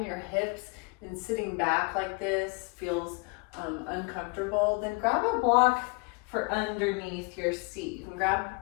your hips and sitting back like this feels uncomfortable, then grab a block for underneath your seat. You can grab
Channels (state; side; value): quieter; right; 31.4 dB